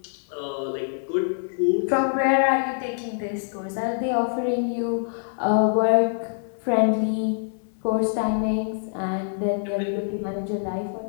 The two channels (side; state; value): right; silent; digital silence